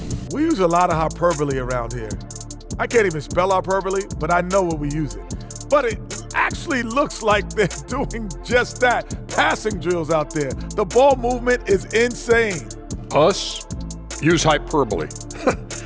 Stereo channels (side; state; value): both; identical; correlation 1.00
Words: We use a lot of hyperbole around here. I can't even spell hyperbole, but I know what we use it. But it actually looks like they're doing just that. Passing drills out there. The ball movement is insane. Us? Use hyperbole.